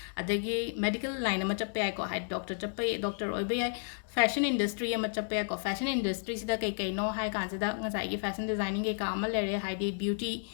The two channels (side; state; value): right; silent; digital silence